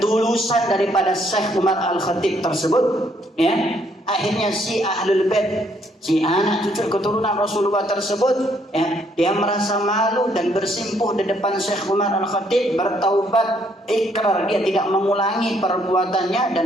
daripada Syekh Umar Al-Khatib tersebut, ya, akhirnya si ahlul bait, si anak cucu keturunan Rasulullah tersebut, ya, dia merasa malu dan bersimpuh di depan Syekh Umar Al-Khatib, bertaubat, ikrar dia tidak mengulangi perbuatannya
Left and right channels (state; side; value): normal; both; correlation 0.69